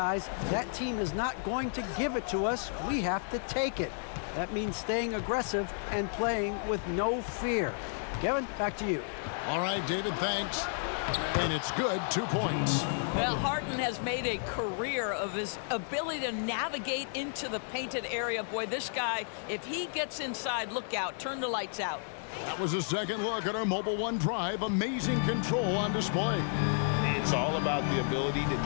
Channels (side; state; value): right; silent; 56 dB below the other